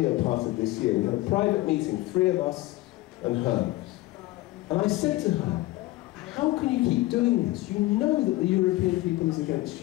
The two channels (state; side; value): quieter; right; 18.5 dB